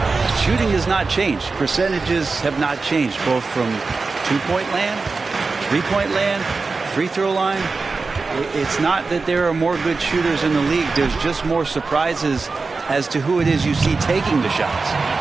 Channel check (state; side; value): quieter; left; 4.1 dB